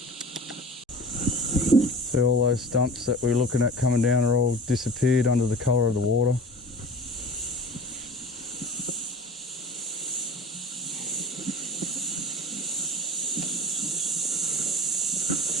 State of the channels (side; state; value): both; normal; correlation 0.39